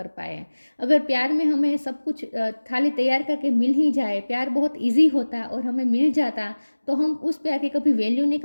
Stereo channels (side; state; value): both; inverted; correlation -1.00